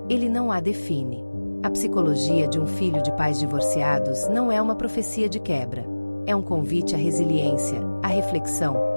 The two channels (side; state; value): both; inverted; correlation -1.00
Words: ele não a define. A psicologia de um filho de pais divorciados não é uma profecia de quebra. É um convite à resiliência, à reflexão,